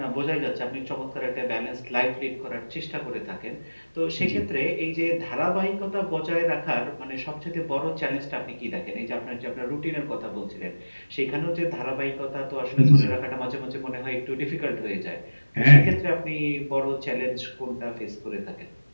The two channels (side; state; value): both; inverted; correlation -1.00